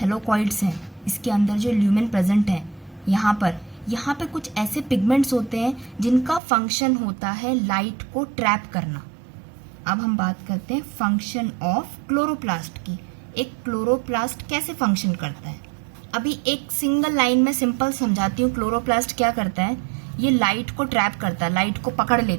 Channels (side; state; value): left; drops out; at 6.4 s